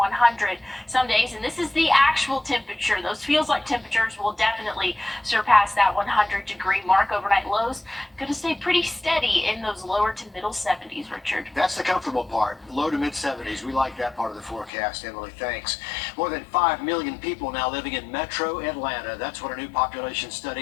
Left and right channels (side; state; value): right; drops out; at 14.7 s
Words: some days. And this is the actual temperature. Those feels like temperatures will definitely surpass that 100-degree mark. Overnight lows going to stay pretty steady in those lower to middle 70s, Richard. That's the comfortable part, low to mid 70s. We like that part of the forecast, Emily. Thanks. More than 5 million people now living in metro Atlanta. That's what a new population